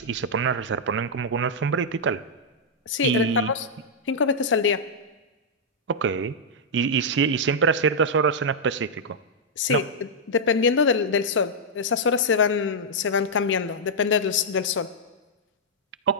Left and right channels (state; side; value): normal; both; correlation -0.07